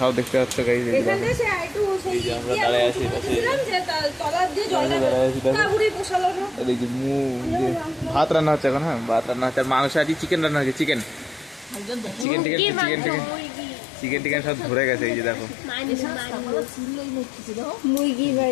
দেখতে পাচ্ছ গাইজ, আমরা দাঁড়ায় আছি ভাত রান্না হচ্ছে এখন। হ্যাঁ ভাত রান্না হচ্ছে, আর মাংস আছে, চিকেন রান্না হচ্ছে। চিকেন চিকেন টিকেন চিকেন টিকেন চিকেন টিকেন সব ধরে গেছে। এই যে দেখো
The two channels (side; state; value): right; drops out; at 12.2 s